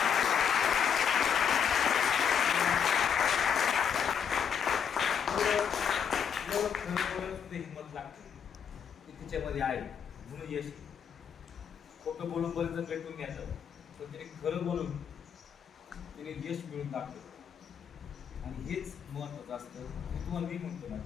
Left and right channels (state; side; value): quieter; right; 7.6 dB